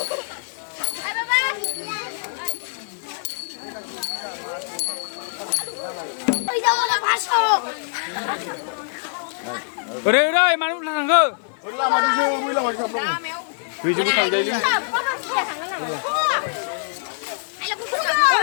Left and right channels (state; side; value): silent; right; digital silence